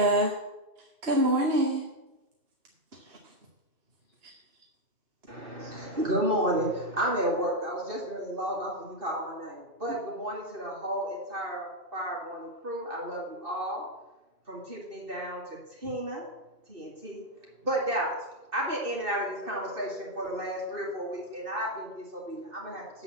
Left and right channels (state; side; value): late; left; 2.6 ms